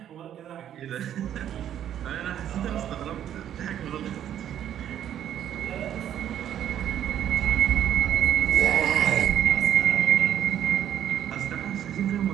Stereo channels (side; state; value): left; quieter; 10.5 dB